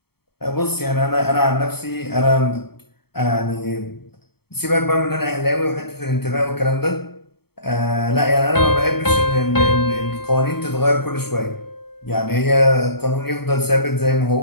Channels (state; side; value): late; right; 0.96 ms